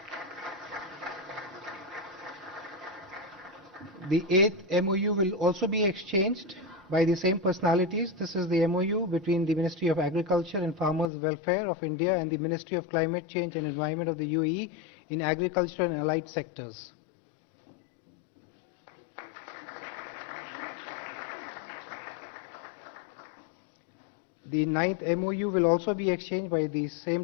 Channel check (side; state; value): right; drops out; at 11.1 s